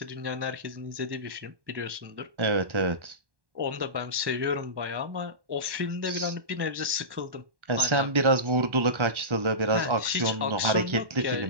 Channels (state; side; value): late; left; 1.1 ms